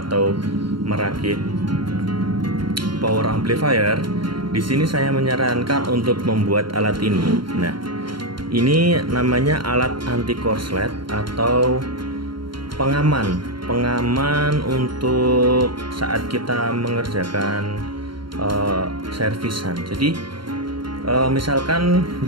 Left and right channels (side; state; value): left; late; 0.73 ms